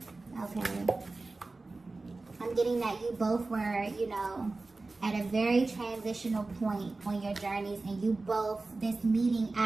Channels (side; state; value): left; quieter; 3.4 dB